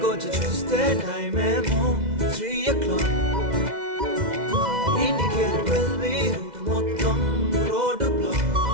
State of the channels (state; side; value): late; left; 2.0 ms